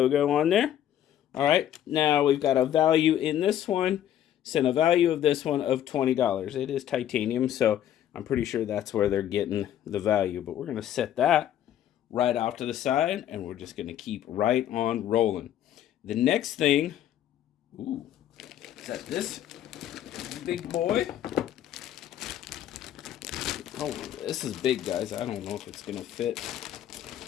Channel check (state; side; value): quieter; right; 11.2 dB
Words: on there. All right. Now we've got a value in this one. Sent a value of this one of $20. It is titanium, so I'm pretty sure that's where they're getting the value. But we're going to set that right off to the side, and we're just going to keep right on rolling. The next thing, ooh, is that this big boy? Oh, this is big, guys. I don't know if it's going to fit